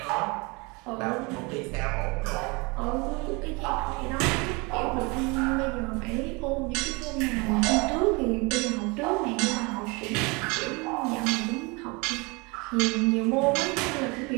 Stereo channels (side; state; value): left; quieter; 27.8 dB